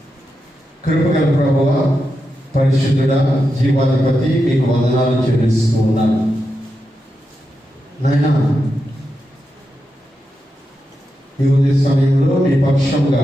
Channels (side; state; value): both; normal; correlation 0.87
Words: కృపగల ప్రభువా, పరిశుద్ధుడా, జీవాధిపతి, మీకు వందనాలు చెల్లిస్తూ ఉన్నాను. నాయనా, ఈ ఉదయ సమయంలో మీ పక్షంగా